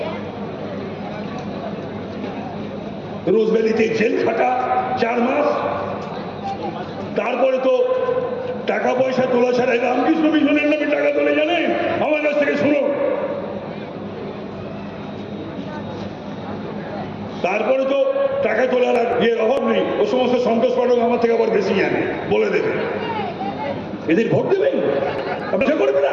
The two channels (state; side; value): identical; both; correlation 1.00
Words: রোজভ্যালিতে জেল খাটা 4 মাস, তারপরে তো টাকা পয়সা তোলা ছাড়া রামকৃষ্ণ মিশনের নামে টাকা তোলে জানেন? আমার কাছ থেকে শুনো। তারপরে তো টাকা তোলার আর ইয়ের অভাব নেই, ও সমস্ত সন্তোষ পাঠক আমার থেকে আবার বেশি জানে, বলে দেবে। এদের ভোট দেবেন? আপনার করবে